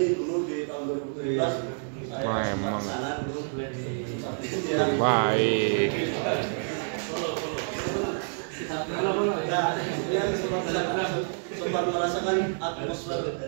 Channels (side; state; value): left; silent; 59 dB below the other